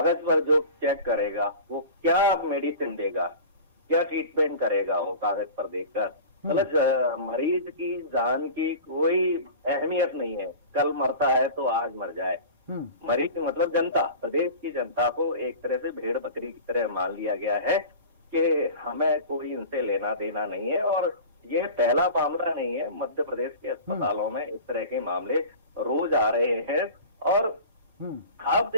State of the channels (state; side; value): inverted; both; correlation -0.36